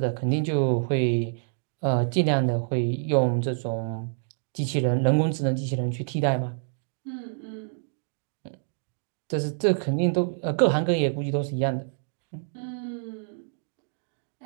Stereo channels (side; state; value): left; silent; digital silence